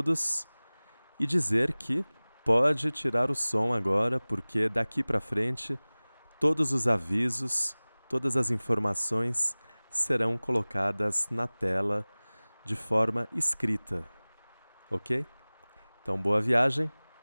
e dizer que pode tirar o som agora, porque daqui para frente todos os avisos, todas as informações serão colocadas na tela de forma escrita, ok? Então, boa viagem,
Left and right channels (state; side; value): inverted; both; correlation -1.00